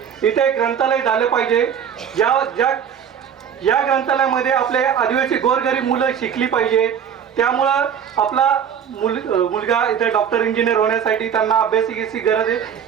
एक ग्रंथालय झालं पाहिजे. या ग्रंथालयामध्ये आपले आदिवासी गोरगरीब मुलं शिकली पाहिजे. त्यामुळं आपला मुलगा इथे डॉक्टर इंजिनियर होण्यासाठी त्यांना अभ्यासिकेची गरज आहे,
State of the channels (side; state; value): left; quieter; 8.1 dB